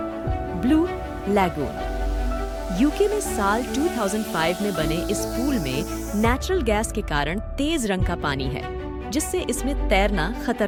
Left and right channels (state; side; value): identical; both; correlation 1.00